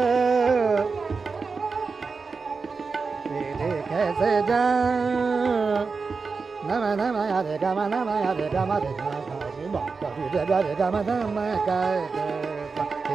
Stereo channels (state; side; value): quieter; left; 4.7 dB